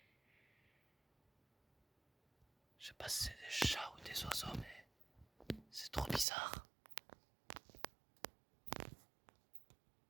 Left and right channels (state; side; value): drops out; left; at 6.2 s